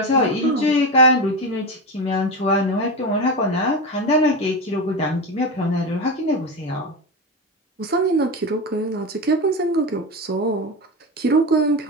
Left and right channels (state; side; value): normal; both; correlation 0.19